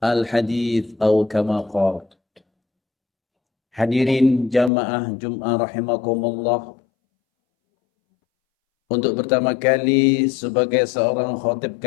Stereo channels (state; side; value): drops out; right; at 4.7 s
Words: أو كما قال. Hadirin jamaah Jum'ah rahimakumullah, untuk pertama kali sebagai seorang khatib